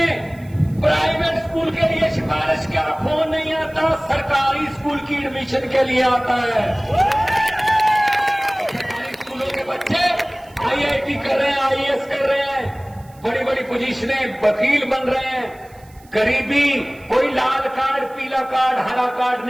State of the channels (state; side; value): noise; right; hiss, 28 dB below the sound